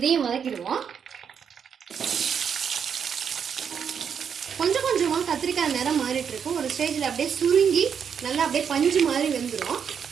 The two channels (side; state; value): left; quieter; 7.3 dB